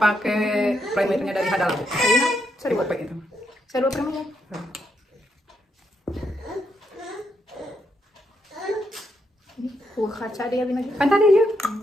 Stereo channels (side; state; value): both; normal; correlation 0.79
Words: primernya dari Hadalabu. Saya buat pakai itu. Saya dua primer. Kaca dia binagi. Kan tadi ya.